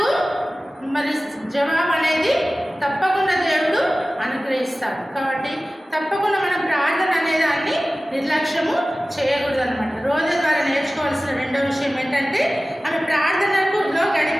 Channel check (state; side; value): normal; both; correlation 0.97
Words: మరి జవాబు అనేది తప్పకుండా దేవుడు అనుగ్రహిస్తాడు. కాబట్టి తప్పకుండా మనం ప్రార్థన అనేదాన్ని నిర్లక్ష్యము చేయకూడదు అనమాట. రోజు ద్వారా నేర్చుకోవాల్సిన రెండో విషయం ఏంటంటే ఆమె ప్రార్థనలో